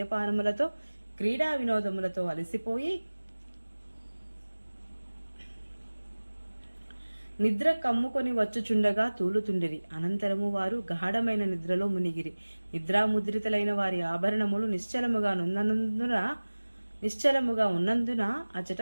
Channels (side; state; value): both; inverted; correlation -1.00